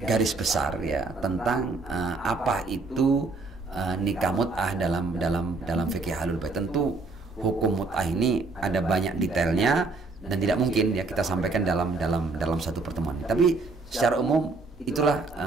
garis besar ya tentang apa itu nikah mut'ah dalam fikih Ahlul Bait. Tentu hukum mut'ah ini ada banyak detailnya dan tidak mungkin ya kita sampaikan dalam satu pertemuan. Tapi secara umum itulah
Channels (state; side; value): quieter; left; 3.7 dB